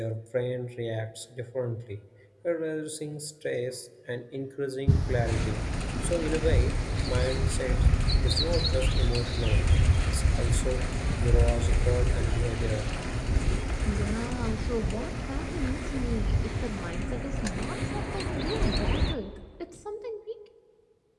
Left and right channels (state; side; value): identical; both; correlation 1.00